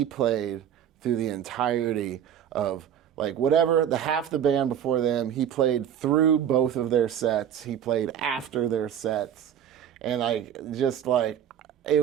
played through the entirety of like whatever the half the band before them. He played through both of their sets. He played after their sets, and I just like it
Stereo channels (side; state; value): left; quieter; 9.5 dB